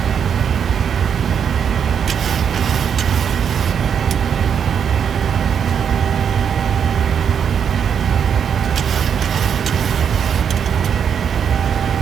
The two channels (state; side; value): quieter; left; 7.7 dB